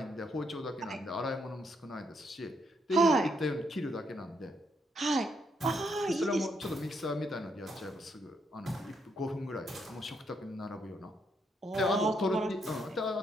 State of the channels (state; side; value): normal; both; correlation 0.76